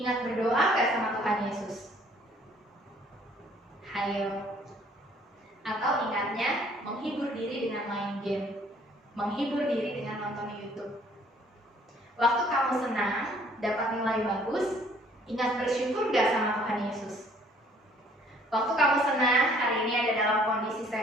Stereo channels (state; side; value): normal; both; correlation 0.59